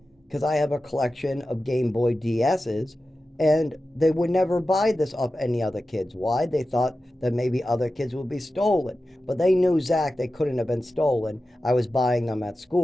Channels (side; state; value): both; normal; correlation 0.93